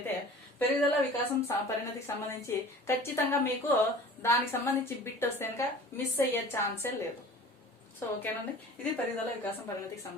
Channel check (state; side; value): normal; both; correlation 0.42